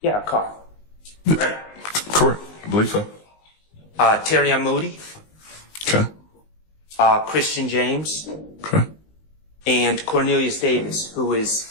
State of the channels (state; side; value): late; right; 19 ms